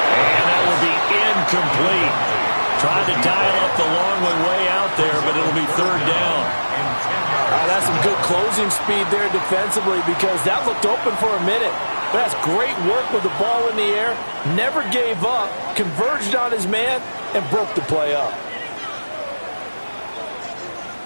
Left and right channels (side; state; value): both; inverted; correlation -1.00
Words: And that will be incomplete. Tried to dial up the long one way out there, but it'll be 3rd down. That's some good closing speed there defensively, because that looked open for a minute. That's great work with the ball in the air. Never gave up, converged on his man, and broke the play up.